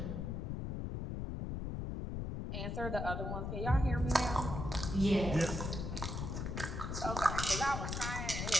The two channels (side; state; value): left; noise; rumble, 3 dB below the sound